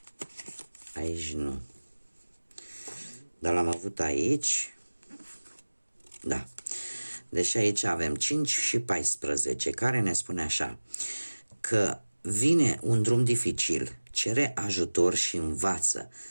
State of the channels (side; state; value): both; inverted; correlation -1.00